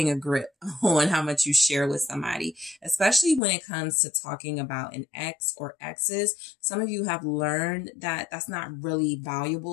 a grip on how much you share with somebody, especially when it comes to talking about an ex or exes. Some of you have learned that that's not really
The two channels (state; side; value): drops out; right; at 3.4 s